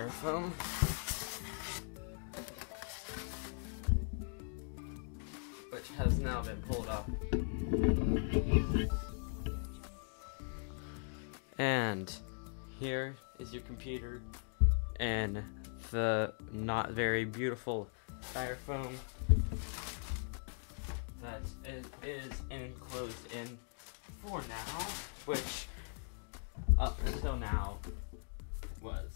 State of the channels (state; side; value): silent; right; 51 dB below the other